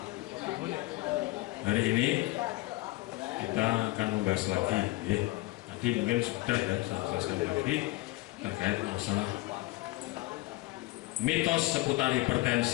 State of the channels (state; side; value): quieter; right; 20.2 dB